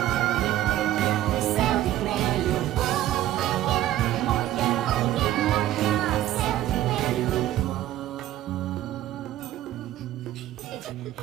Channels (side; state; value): left; quieter; 13.6 dB